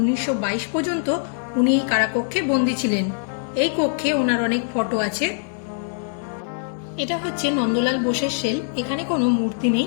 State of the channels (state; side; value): silent; right; 62 dB below the other